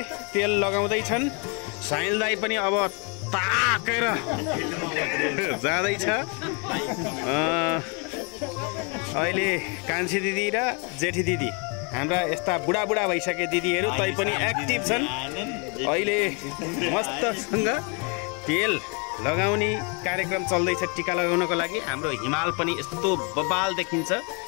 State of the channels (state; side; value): quieter; right; 34.5 dB